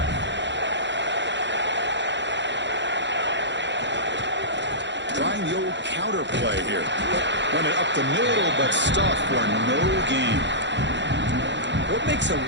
Trying the old counter play here. Run it up the middle, but stuffed for no gain. What makes a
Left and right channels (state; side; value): late; left; 0.52 ms